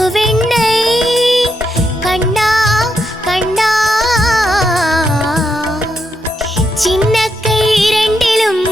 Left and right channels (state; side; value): normal; both; correlation 0.82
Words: കണ്ണാ കണ്ണാ ചിന്ന കൈ രണ്ടിലും